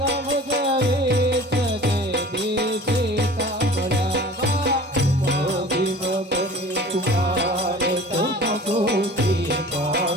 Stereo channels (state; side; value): normal; both; correlation 0.43